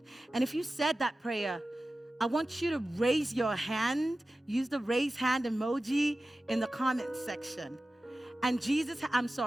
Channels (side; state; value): both; normal; correlation 0.95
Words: And if you said that prayer, I want you to raise your hand, use the raise hand emoji in the comment section. And